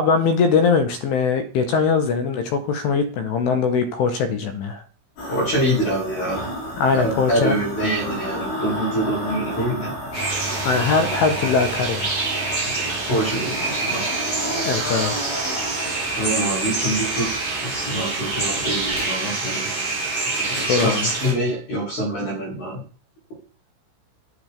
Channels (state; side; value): late; right; 16 ms